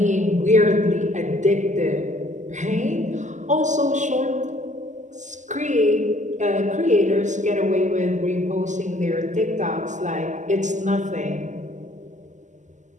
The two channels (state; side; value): late; left; 0.35 ms